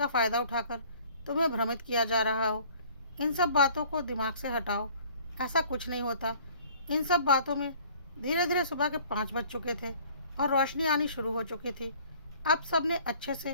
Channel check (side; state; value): both; inverted; correlation -0.54